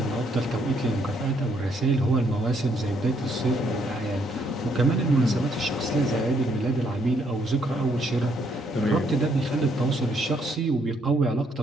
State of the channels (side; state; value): both; normal; correlation 0.71